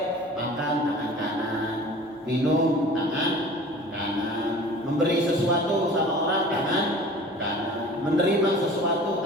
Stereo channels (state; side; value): normal; both; correlation 0.43